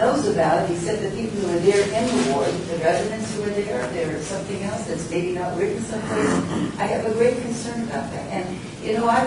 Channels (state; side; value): identical; both; correlation 1.00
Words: about it except the people who are there in the ward, the residents who are there. There's something else that's maybe not written someplace. I have a great concern about that. And, you know,